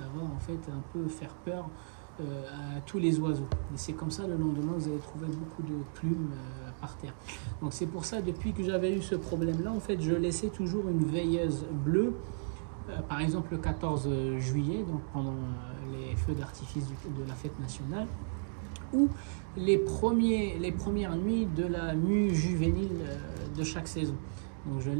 va en fait un peu faire peur à tous les oiseaux. Et c'est comme ça, le lendemain, vous allez trouver beaucoup de plumes par terre. Donc c'est pour ça, depuis que j'avais eu ce problème-là, en fait, je laissais toujours une veilleuse bleue. Par exemple, le 14 juillet, donc pendant les feux d'artifice de la fête nationale, ou les premières nuits de la mue juvénile de chaque saison. Donc je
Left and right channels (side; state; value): left; silent; digital silence